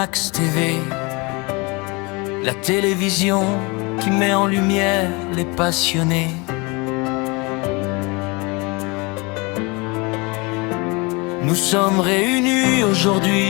TV, la télévision qui met en lumière les passionnés. Nous sommes réunis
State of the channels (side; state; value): right; quieter; 27.5 dB